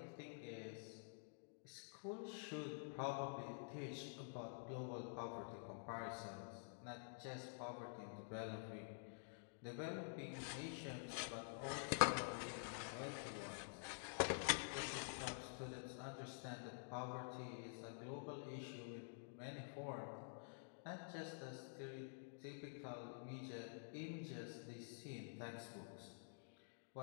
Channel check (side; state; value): right; silent; digital silence